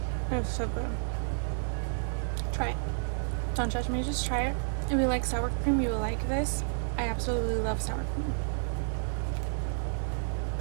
It's so good. Try it. Don't judge me, just try it. If you like sour cream, you will like this. I absolutely love sour cream.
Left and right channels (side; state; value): left; silent; digital silence